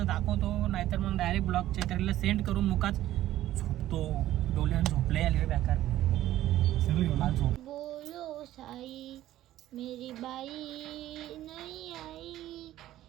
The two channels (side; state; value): left; quieter; 13.9 dB